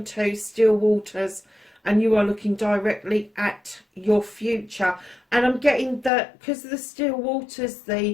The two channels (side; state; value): right; drops out; at 6.1 s